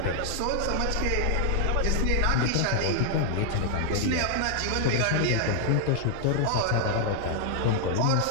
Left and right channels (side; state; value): both; different; correlation -0.01